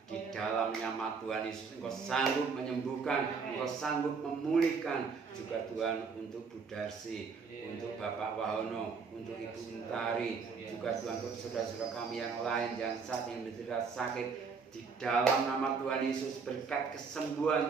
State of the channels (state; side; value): quieter; left; 5.3 dB